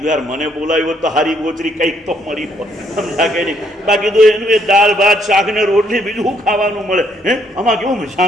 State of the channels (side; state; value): both; normal; correlation 0.70